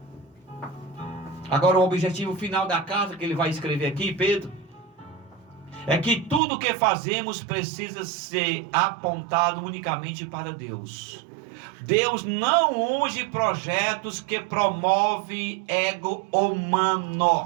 Agora o objetivo final da carta que ele vai escrever aqui, Pedro, é que tudo que fazemos precisa ser apontado unicamente para Deus. Deus não unge projetos que promovem ego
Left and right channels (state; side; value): drops out; left; at 6.4 s